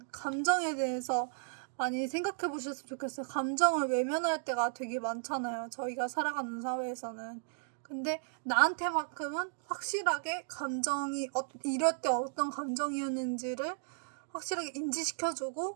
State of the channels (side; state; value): left; silent; digital silence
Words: 감정에 대해서 많이 생각해 보셨으면 좋겠어요. 감정을 외면할 때가 되게 많잖아요. 저희가 살아가는 사회에서는. 근데 나한테만큼은 확실하게 감정이 이럴 때 어떤 감정이었는지를 확실하게